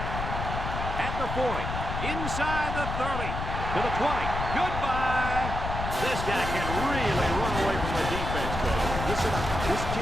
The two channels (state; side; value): noise; left; rumble, 4 dB below the sound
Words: At the 40. Inside the 30. To the 20. Goodbye. This guy can really run away from the defense, coach. Listen up. This